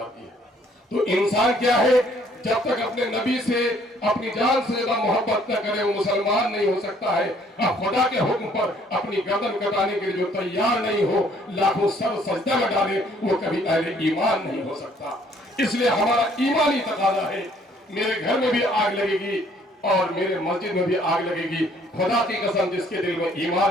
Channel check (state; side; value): normal; both; correlation 0.62